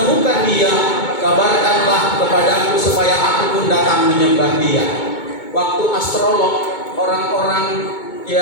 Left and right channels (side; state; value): right; late; 2.2 ms